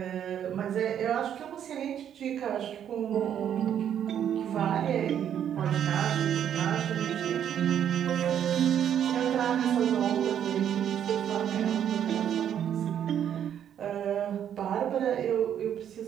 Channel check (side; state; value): left; quieter; 9.5 dB